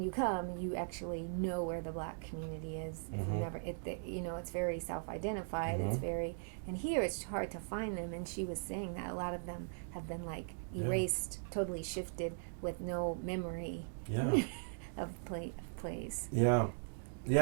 you come, you actually know where the black community is. It's very self-identified. It's very, and here it's hard to find them. And she was saying that a lot of them have been like erased, totally shifted with no memory of place. Yeah,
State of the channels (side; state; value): left; silent; digital silence